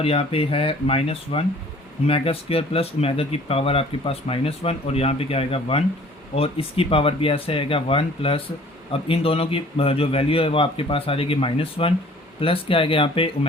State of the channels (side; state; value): both; normal; correlation 0.52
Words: यहाँ पे है -1 ओमेगा स्क्वायर प्लस ओमेगा की पावर आपके पास -1, और यहाँ पे क्या आएगा 1, और इसकी पावर भी ऐसे आएगा 1 प्लस, अब इन दोनों की जो वैल्यू है वो आपके पास आ जाएगी -1, प्लस क्या आएगा यहाँ पे